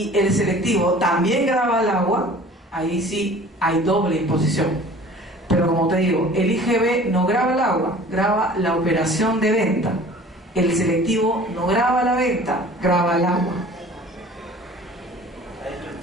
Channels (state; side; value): normal; both; correlation 0.46